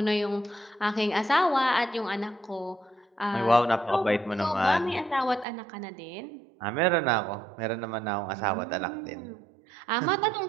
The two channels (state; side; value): drops out; left; at 5.5 s